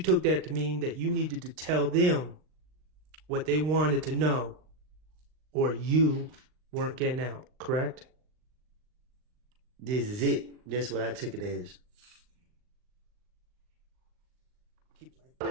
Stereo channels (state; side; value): late; left; 39 ms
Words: that to mean that you needed to tell them what they wanted to know, or you weren't getting out, correct? This is it. That's what I took it as.